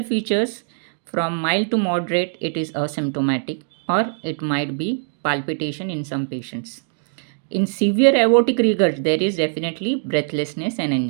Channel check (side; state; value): left; silent; digital silence